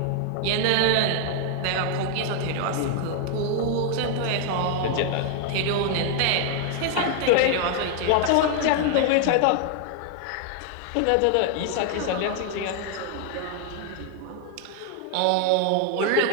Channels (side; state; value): both; different; correlation 0.00